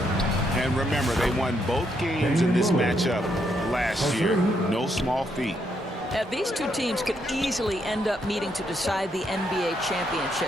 And remember, they won both games in this matchup last year. No small feat. These two teams could easily end up meeting to decide the NBA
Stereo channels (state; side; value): normal; both; correlation 0.76